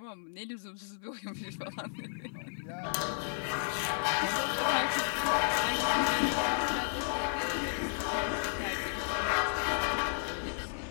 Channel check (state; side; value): silent; right; 56 dB below the other